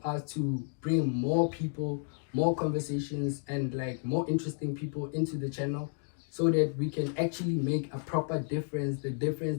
us to bring more people more conversations and like more interesting people into the channel, so that we can actually make a proper difference, the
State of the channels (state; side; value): silent; right; 57 dB below the other